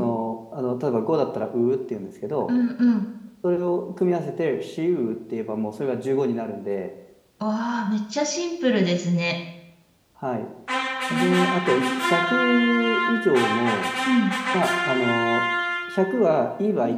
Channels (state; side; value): identical; both; correlation 1.00